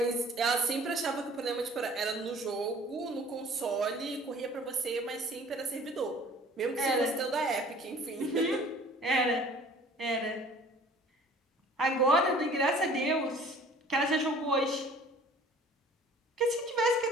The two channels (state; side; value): normal; both; correlation 0.50